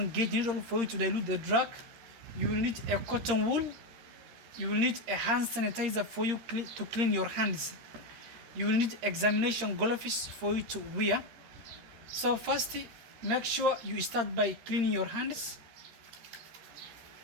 gauge needle for you to dilute the drug, you will need a cotton wool, you will need a hand sanitizer for you to clean your hands, you will need examination gloves for you to wear. So first, make sure you start by cleaning your hands.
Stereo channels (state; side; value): late; left; 13 ms